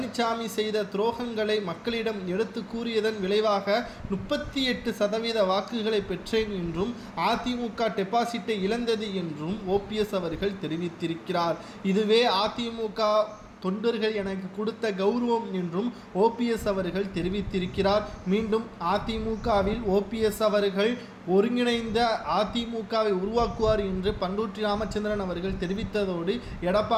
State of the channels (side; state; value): both; identical; correlation 1.00